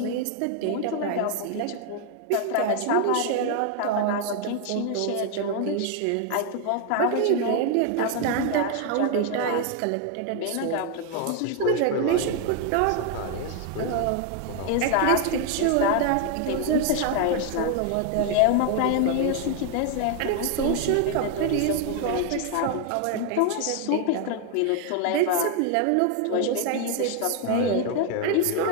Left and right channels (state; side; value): different; both; correlation 0.01